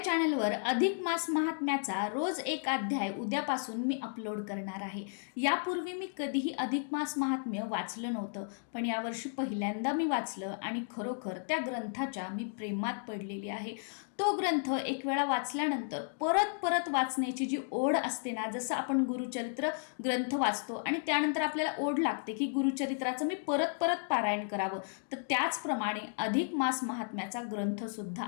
चॅनलवर अधिक मास महात्म्याचा रोज एक अध्याय उद्यापासून मी अपलोड करणार आहे. यापूर्वी मी कधीही अधिक मास महात्म्य वाचलं नव्हतं, पण यावर्षी पहिल्यांदा मी वाचलं आणि खरोखर त्या ग्रंथाच्या मी प्रेमात पडलेली आहे. तो ग्रंथ एक वेळा वाचल्यानंतर परत परत वाचण्याची जी ओढ असते ना, जसं आपण गुरुचरित्र ग्रंथ वाचतो आणि त्यानंतर आपल्याला ओढ लागते की गुरुचरित्राचं मी परत परत पारायण करावं, तर त्याचप्रमाणे अधिक मास महात्म्याचा ग्रंथ सुद्धा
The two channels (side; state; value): right; silent; digital silence